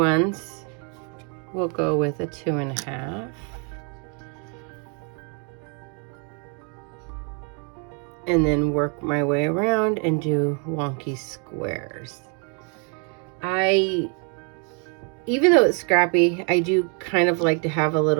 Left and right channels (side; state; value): left; quieter; 37.6 dB